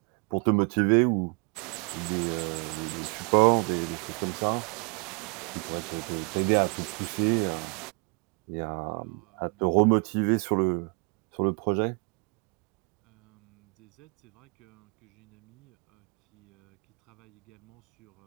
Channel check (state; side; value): quieter; left; 35.9 dB